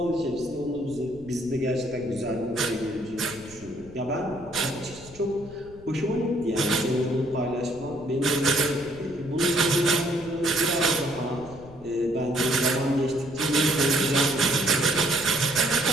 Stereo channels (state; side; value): noise; left; rumble, 21 dB below the sound